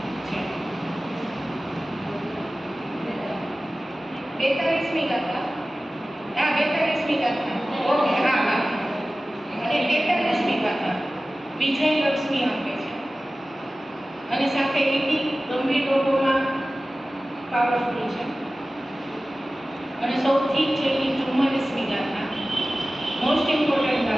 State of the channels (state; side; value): normal; both; correlation 0.96